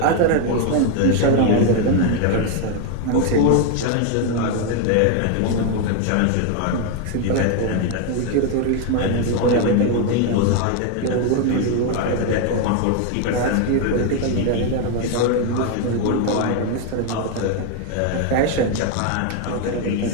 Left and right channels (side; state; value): both; different; correlation 0.01